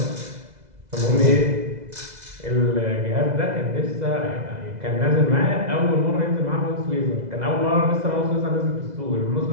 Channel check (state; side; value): late; left; 2.0 ms